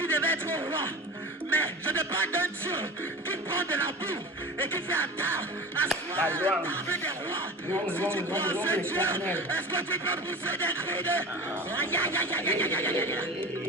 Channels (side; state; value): both; normal; correlation 0.33